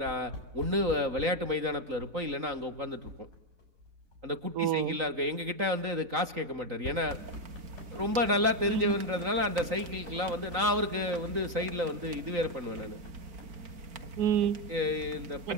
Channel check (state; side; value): late; left; 3.9 ms